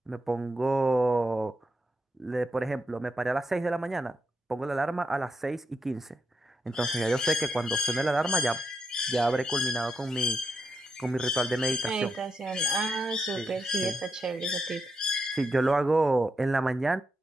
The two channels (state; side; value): normal; both; correlation 0.83